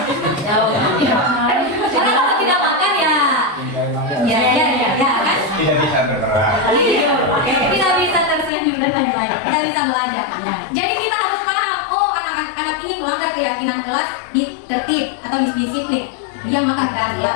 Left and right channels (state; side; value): drops out; right; at 8.5 s